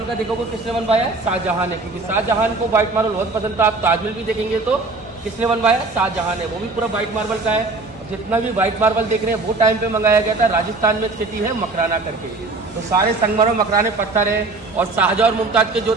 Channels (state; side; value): quieter; left; 3.5 dB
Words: का देखोगे किसने बनवाया? शाहजहां ने, क्योंकि शाहजहां को व्हाइट मार्बल बहुत पसंद था। आप ताजमहल भी देखेंगे तो किसने बनवाया? शाहजहां ने, वो भी पूरा व्हाइट मार्बल का है। जितना भी व्हाइट मार्बल देख रहे हैं वो टाइम पे मंगाया गया था। राजस्थान में सिटी है मकराना करके, तो सारे संगमरमर मकराने पत्थर है। और शाहजहां और मुमताज के जो